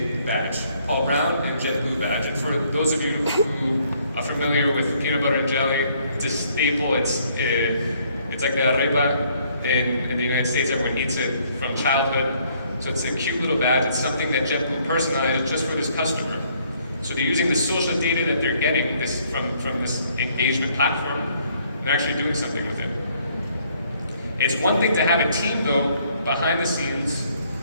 badge, Paul Brown and JetBlue badge. And for those of you who are familiar with peanut butter and jelly, it's a staple. It's like the arepa in the United States. Everyone eats it from childhood. So it's a cute little badge. It's something that JetBlue personalized just for this customer. So they're using the social data that they're getting from this engagement platform, and they're actually doing something with it. It's one thing to have a team, though, behind the scenes,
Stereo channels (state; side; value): inverted; both; correlation -0.66